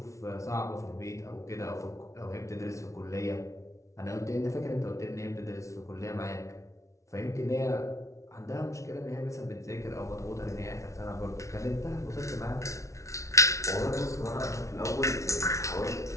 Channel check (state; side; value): late; right; 0.14 ms